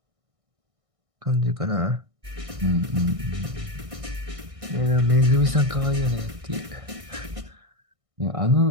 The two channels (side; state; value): left; late; 1.6 ms